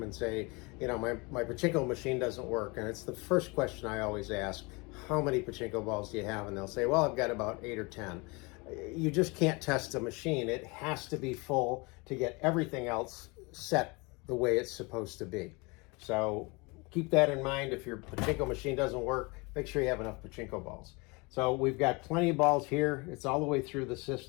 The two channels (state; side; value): quieter; right; 27.5 dB